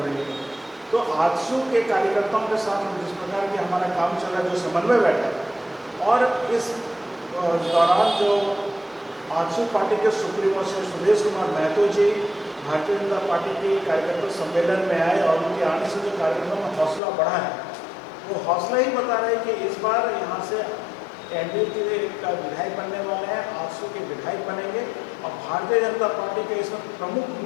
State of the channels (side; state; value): right; drops out; at 17.0 s